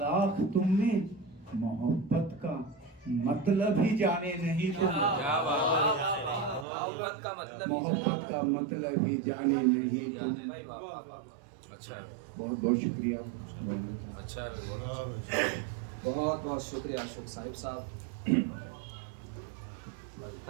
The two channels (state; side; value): drops out; left; at 6.7 s